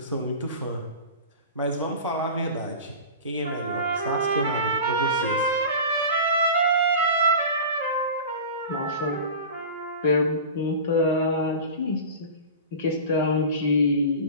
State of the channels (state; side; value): inverted; both; correlation -0.33